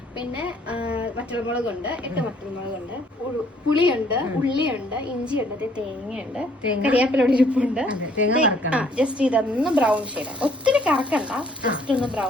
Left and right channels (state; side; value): normal; both; correlation 0.62